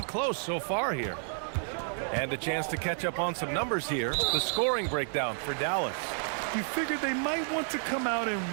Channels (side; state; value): left; silent; 57 dB below the other